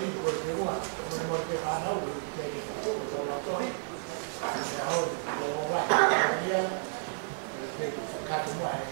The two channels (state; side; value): silent; left; digital silence